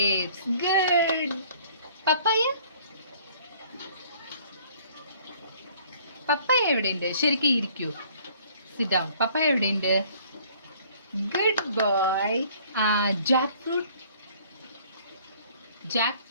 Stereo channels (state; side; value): inverted; both; correlation -0.56